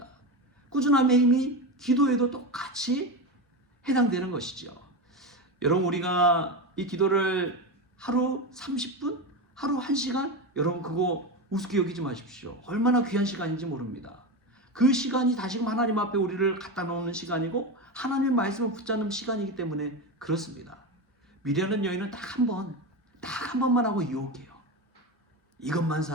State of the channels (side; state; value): both; normal; correlation 0.18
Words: 꾸준함의 힘이 기도에도 똑같이 해당되는 것이죠. 여러분, 우리가 이 기도를 하루 30분, 하루 1시간, 여러분 그거 우습게 여기지 마십시오. 얼마나 귀한 시간인지 모릅니다. 그 시간이 다시금 하나님 앞에 우리를 갖다 놓는 시간이고 하나님의 말씀을 붙잡는 시간이기 때문에 그렇습니다. 미련한 여인은 딱 한 번만 하고 유혹해요. 이것만